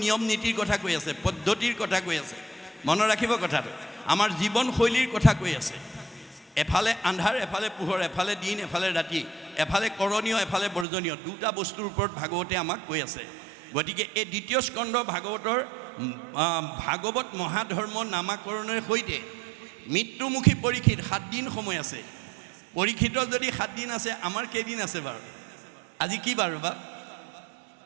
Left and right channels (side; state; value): left; drops out; at 10.9 s